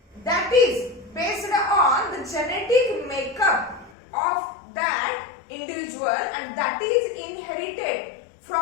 that is based on the genetic makeup of that individual, and that is inherited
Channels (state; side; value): drops out; right; at 4.0 s